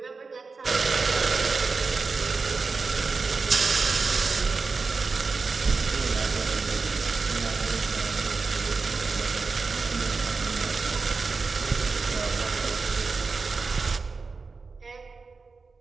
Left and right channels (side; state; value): left; quieter; 4.4 dB